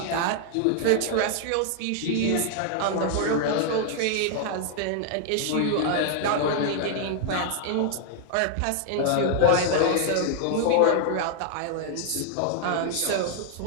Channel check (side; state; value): both; different; correlation -0.01